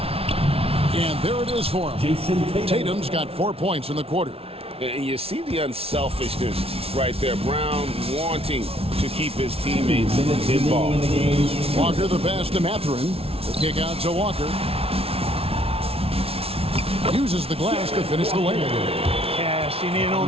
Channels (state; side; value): late; left; 0.28 ms